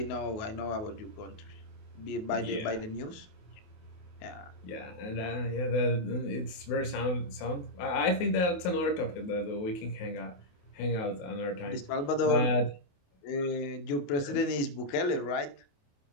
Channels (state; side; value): late; right; 28 ms